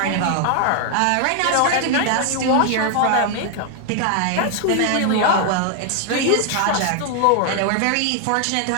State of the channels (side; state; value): both; different; correlation 0.00